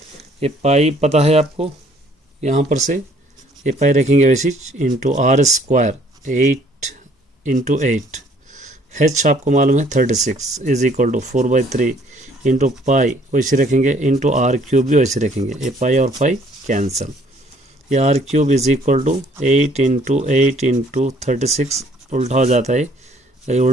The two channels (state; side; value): normal; both; correlation 0.61